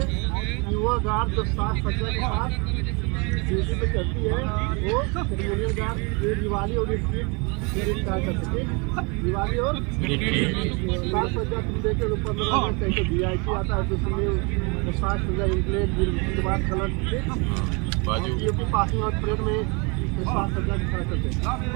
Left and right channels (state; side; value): quieter; left; 31.0 dB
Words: कि वह गार्ड जो साज सज्जा के साथ ड्यूटी पे चलती है, वो सेरेमोनियल गार्ड। ये दिवाली और रिट्रीट कार्य करते हैं। दिवाली और साज सज्जा तुम देखे तो 15 अगस्त कैसे VIP आता है, तो उसमें साज सज्जा इंप्लेट के बाद कलर की पासिंग आउट परेड में साज सज्जा के साथ करते हैं।